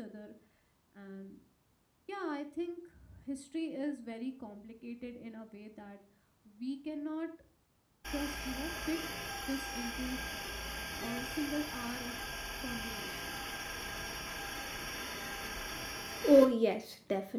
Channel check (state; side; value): identical; both; correlation 1.00